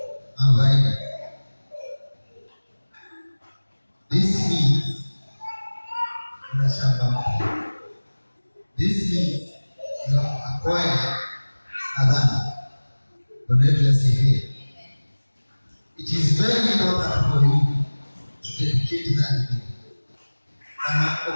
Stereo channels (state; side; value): inverted; both; correlation -1.00